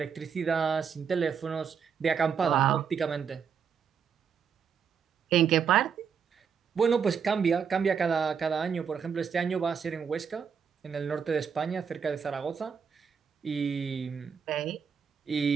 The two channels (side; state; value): left; quieter; 6.8 dB